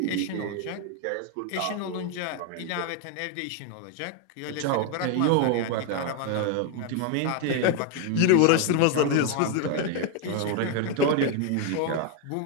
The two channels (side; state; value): both; different; correlation 0.01